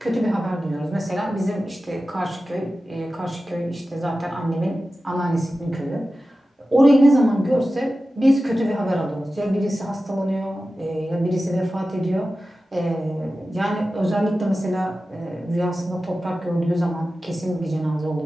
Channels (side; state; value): both; normal; correlation 0.94